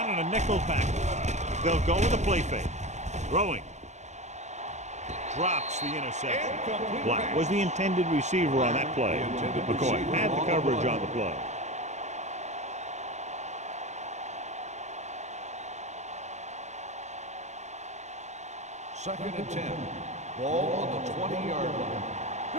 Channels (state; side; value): late; left; 0.33 ms